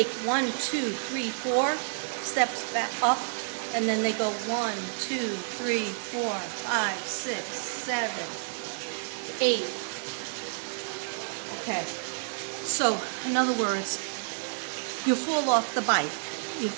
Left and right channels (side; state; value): left; silent; 58 dB below the other